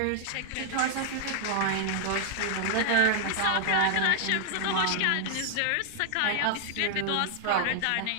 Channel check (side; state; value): both; different; correlation -0.01